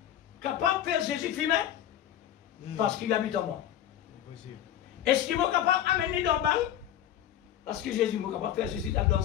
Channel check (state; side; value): quieter; right; 11.2 dB